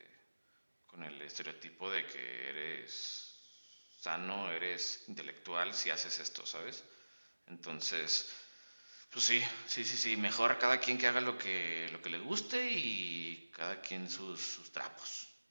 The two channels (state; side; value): inverted; both; correlation -1.00